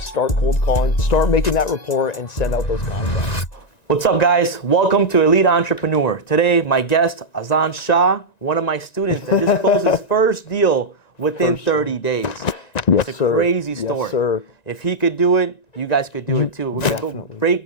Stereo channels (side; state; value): right; late; 1.9 ms